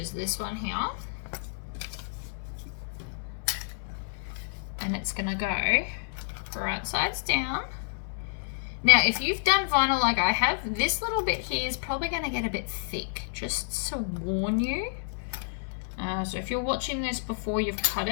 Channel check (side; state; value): right; silent; digital silence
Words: this one here. And it's gonna go right sides down. Now, if you've done vinyl like I have, this little bit here is probably gonna get a bit thick, just to warn you. So if you're watching this before you've cut